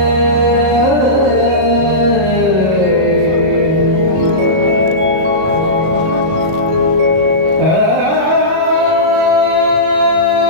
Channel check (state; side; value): late; left; 37 ms